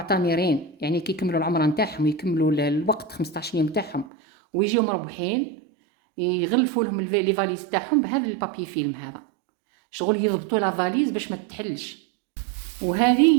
يعني كي يكملوا العمره نتاعهم ويكملوا الوقت 15 يوم تاعهم ويجيو مروحين، يغلفوا لهم لي فاليز تاعهم بهذا البابي فيلم هذا، شغل يضبطوا لا فاليز باش ما تتحلش.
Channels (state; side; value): drops out; left; at 4.0 s